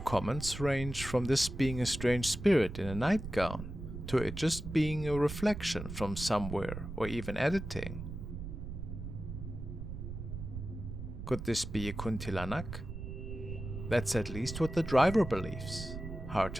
comments range from this being a strange spirit in a nightgown to it just being a reflection from somewhere or even editing. Could this be a kuntilanak? That's at least what the driver believes. Hard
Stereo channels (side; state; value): right; noise; rumble, 8 dB below the sound